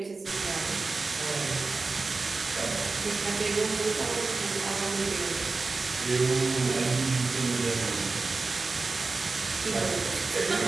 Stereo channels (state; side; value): quieter; left; 3.9 dB